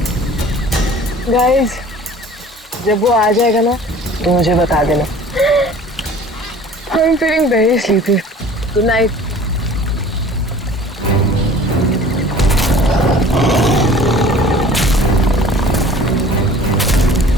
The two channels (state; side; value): normal; both; correlation 0.47